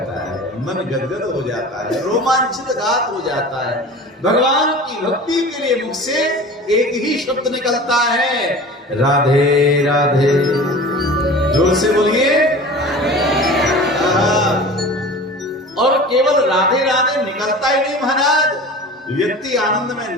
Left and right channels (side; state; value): both; normal; correlation 0.38